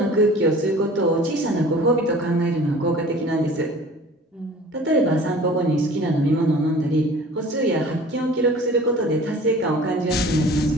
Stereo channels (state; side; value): normal; both; correlation 0.45